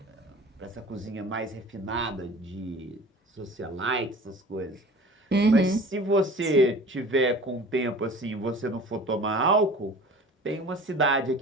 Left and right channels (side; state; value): both; normal; correlation 0.42